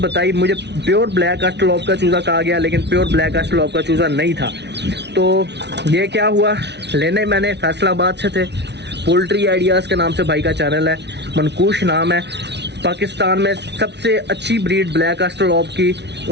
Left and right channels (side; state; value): left; late; 0.50 ms